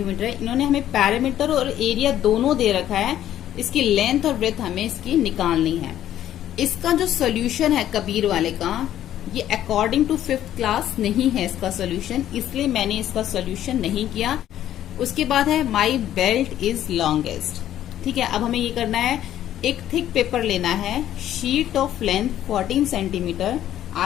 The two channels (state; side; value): quieter; right; 11.9 dB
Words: है। इन्होंने हमें पैरामीटर और एरिया दोनों दे रखा है, इसकी लेंथ और विड्थ हमें इसकी निकालनी है। इसका जो सोल्यूशन है कबीर वाले का, ये अकॉर्डिंग टू 5th क्लास नहीं है इसका सोल्यूशन, इसलिए मैंने इसका सोल्यूशन नहीं किया। उसके बाद है माई बेल्ट इज लॉन्गेस्ट। ठीक है, अब हमें ये करना है, एक थिक पेपर लेना है, शीट ऑफ लेंथ 14 सेंटीमीटर।